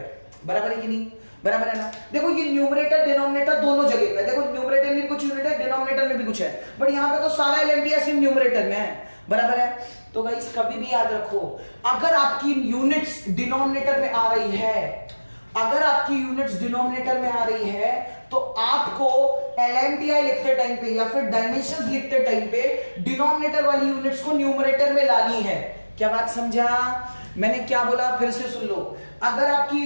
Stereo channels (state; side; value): inverted; both; correlation -1.00